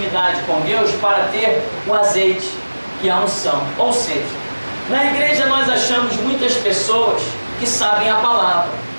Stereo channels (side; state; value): both; inverted; correlation -1.00